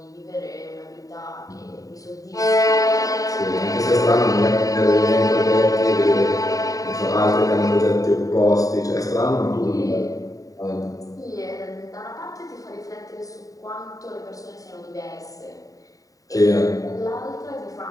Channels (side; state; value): right; late; 0.17 ms